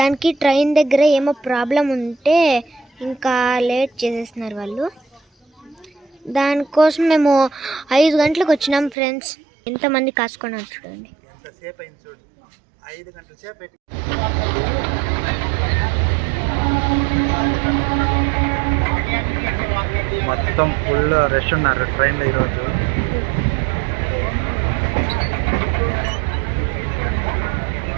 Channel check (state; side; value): drops out; left; at 9.0 s